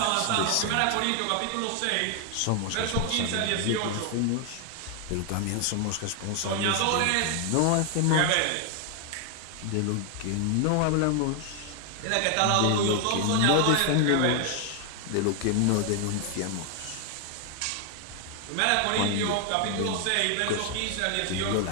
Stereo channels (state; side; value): different; both; correlation 0.00